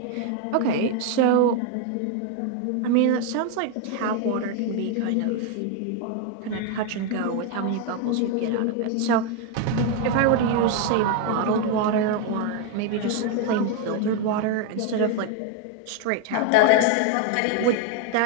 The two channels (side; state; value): both; different; correlation 0.01